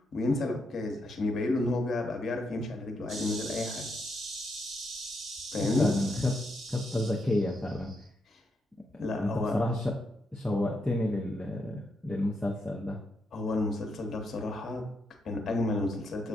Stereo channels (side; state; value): both; normal; correlation 0.80